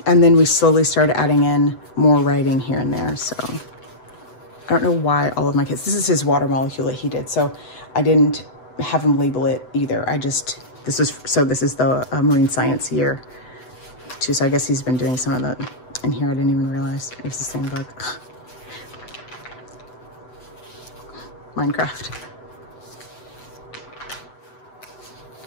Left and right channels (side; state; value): right; late; 7.9 ms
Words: then we slowly started adding in more writing here and there. So I don't know why all of my kids, this is his water molecule that he did. So I didn't have him label it either. This is the marine science year too. So I guess he's been doing some of that in here. I didn't even realize it was the same book. Minecraft.